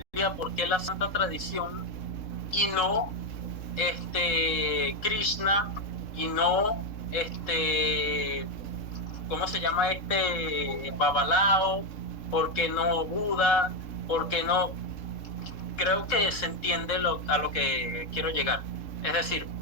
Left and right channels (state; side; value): late; right; 3.7 ms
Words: ¿Por qué la Santa Tradición? Y no Krishna, y no ¿cómo se llama Babalao? ¿Por qué no Buda? ¿Por qué no? Creo que se entiende a lo que quiero llegar. Es decir,